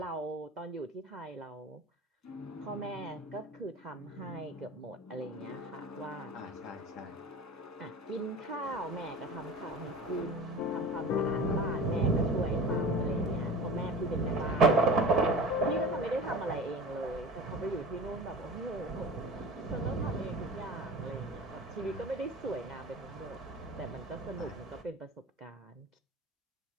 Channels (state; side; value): normal; both; correlation 0.35